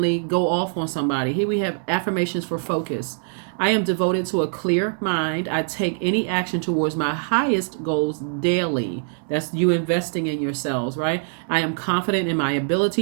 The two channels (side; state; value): left; silent; 63 dB below the other